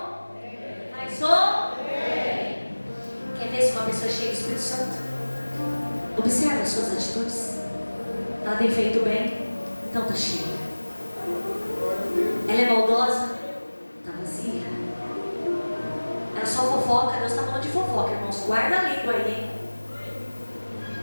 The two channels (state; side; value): inverted; both; correlation -1.00